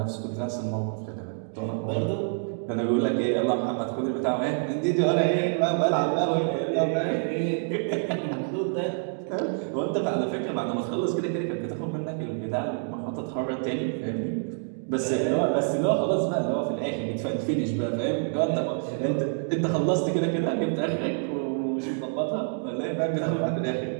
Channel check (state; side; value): silent; left; 60 dB below the other